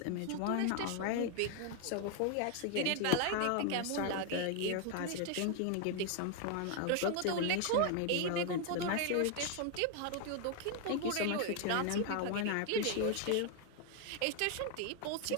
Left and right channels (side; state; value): both; different; correlation 0.00